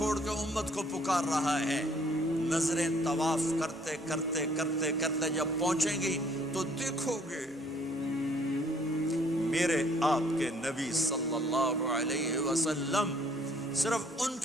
کے امت کو پکار رہا ہے؟ نظریں طواف کرتے کرتے کرتے کرتے جب پہنچیں گی تو دیکھو گے میرے آپ کے نبی صلی اللہ علیہ وسلم، صرف ان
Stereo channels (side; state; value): both; normal; correlation 0.62